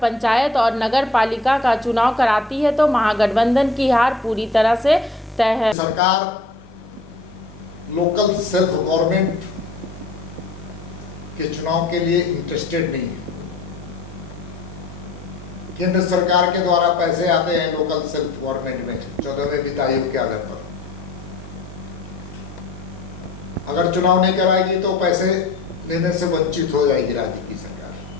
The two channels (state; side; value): quieter; right; 3.3 dB